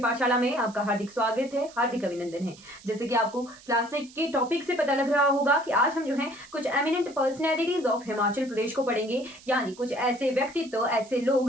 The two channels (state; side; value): noise; right; hiss, 22 dB below the sound